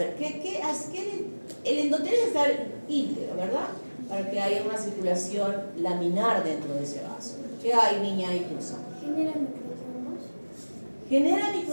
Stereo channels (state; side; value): inverted; both; correlation -1.00